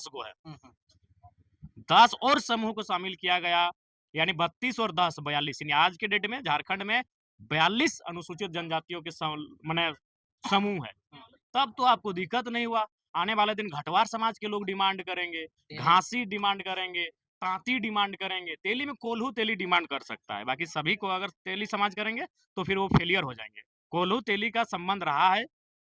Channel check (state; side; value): identical; both; correlation 1.00